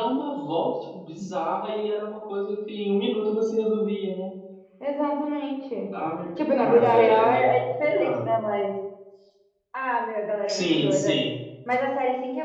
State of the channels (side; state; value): both; identical; correlation 1.00